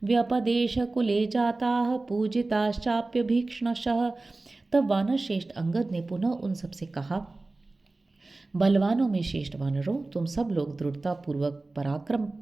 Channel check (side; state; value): left; quieter; 3.2 dB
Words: व्यपदेशकुले जाताः पूजिताश्चाप्य भीक्ष्णशः। तब वानर श्रेष्ठ अंगद ने पुनः उन सबसे कहा, बलवानों में श्रेष्ठ वानरों, तुम सब लोग दृढ़ता पूर्वक पराक्रम